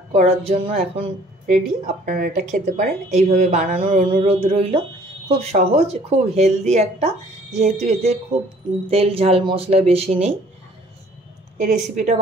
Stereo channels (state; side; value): normal; both; correlation 0.56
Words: করার জন্য এখন রেডি। আপনারা এটা খেতে পারেন। এইভাবে বানানোর অনুরোধ রইল। খুব সহজ, খুব হেলদি একটা, যেহেতু এতে খুব তেল ঝাল মশলা বেশি নেই। এই রেসিপিটা